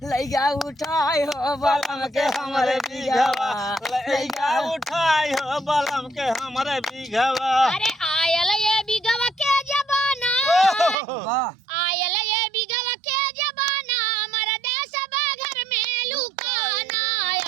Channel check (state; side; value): drops out; left; at 11.0 s